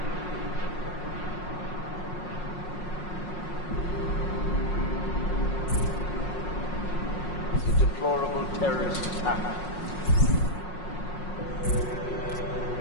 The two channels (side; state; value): right; late; 5.5 ms